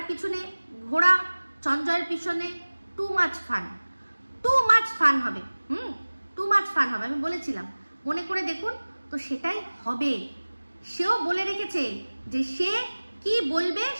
ঘোড়া চঞ্জয়ের পিছনে টু মাচ ফান হবে, আমি বলেছিলাম, মনে করে দেখুন। তো সেটাই হবে। সেও বলে রেখেছে যে সে কি বলবে,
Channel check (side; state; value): both; inverted; correlation -1.00